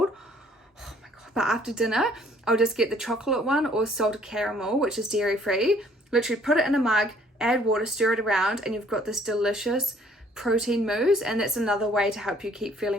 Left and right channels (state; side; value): normal; both; correlation 0.60